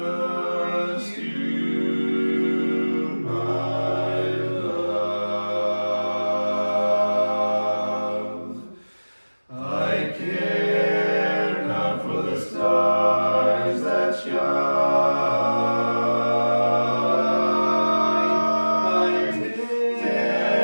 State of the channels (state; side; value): inverted; both; correlation -1.00